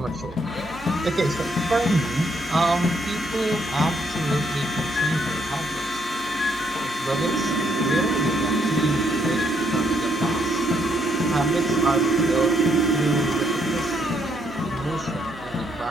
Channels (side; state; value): right; noise; hum, 22 dB below the sound